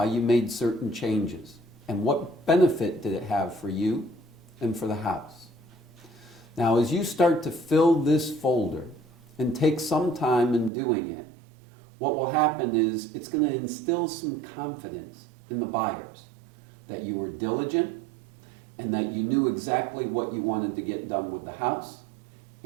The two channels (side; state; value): left; drops out; at 10.7 s